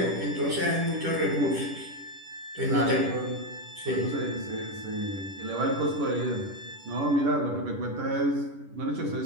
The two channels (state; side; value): late; left; 10 ms